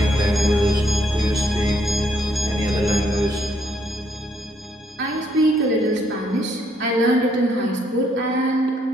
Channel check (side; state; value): both; normal; correlation 0.71